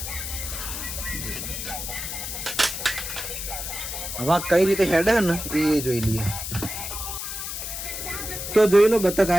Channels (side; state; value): left; noise; hiss, 6 dB below the sound